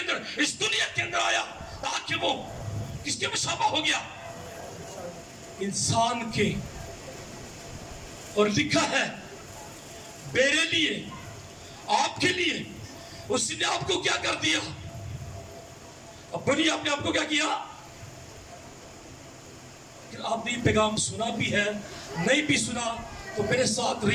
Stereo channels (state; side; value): identical; both; correlation 1.00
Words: इस दुनिया के अंदर आया, ताकि वो किसके मुशाबा हो गया? इंसान के। और लिखा है मेरे लिए, आपके लिए उसने आपको क्या कर दिया? अपनी आपने आपको क्या किया? आपने ये पैगाम सुना भी है, नहीं भी सुना तो मेरे साथ